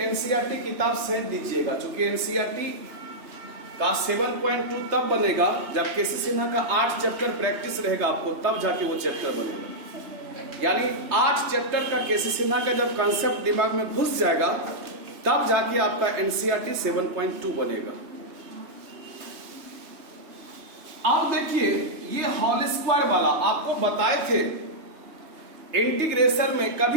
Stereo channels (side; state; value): left; late; 3.2 ms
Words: एनसीईआरटी किताब सेंड दीजिएगा, क्योंकि एनसीईआरटी का 7.2 तब बनेगा जब केसी सिन्हा का 8 चैप्टर प्रैक्टिस रहेगा आपको, तब जाके वो चैप्टर बनेगा। यानी 8 चैप्टर का केसी सिन्हा का जब कॉन्सेप्ट दिमाग में घुस जाएगा तब जाके आपका एनसीईआरटी 7.2 बनेगा। अब देखिए, ये होल स्क्वायर वाला आपको बताए थे इंटीग्रेशन में